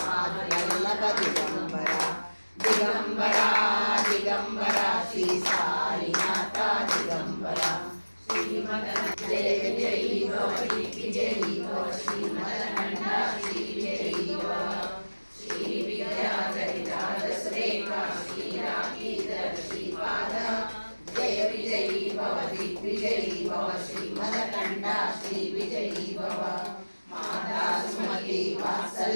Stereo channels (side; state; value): both; inverted; correlation -1.00